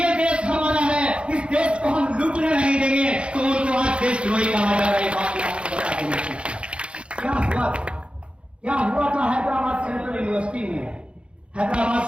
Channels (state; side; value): late; left; 0.058 ms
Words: देश हमारा है, इस देश को हम लूटने नहीं देंगे। तो उनको आज देशद्रोही कहा जा रहा है। बात आपको बता देंगे क्या हुआ था हैदराबाद सेंट्रल यूनिवर्सिटी में। हैदराबाद